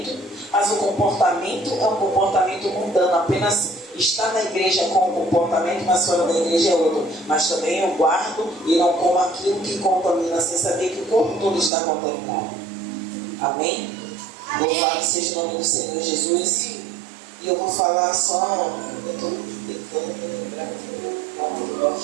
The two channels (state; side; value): drops out; left; at 11.7 s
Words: mas o comportamento é um comportamento mundano, apenas está na igreja com um comportamento, mas fora da igreja é outro. Mas também eu guardo e não como aquilo que contamina, sem saber que o corpo todo está contaminado. Amém? Louvado seja o nome do Senhor Jesus. E eu vou falar só, eu estou tentando me lembrar aqui, para não